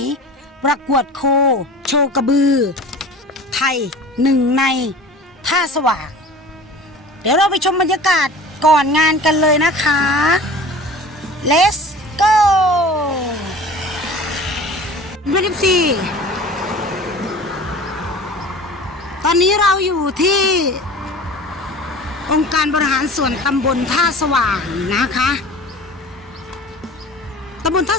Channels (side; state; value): both; normal; correlation 0.40